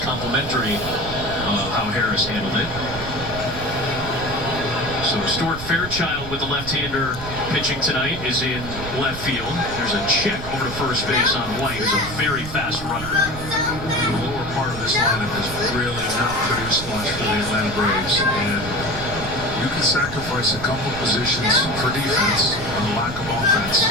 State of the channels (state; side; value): noise; right; rumble, 10 dB below the sound